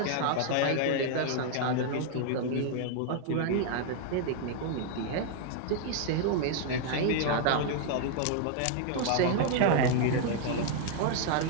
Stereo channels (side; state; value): both; different; correlation 0.00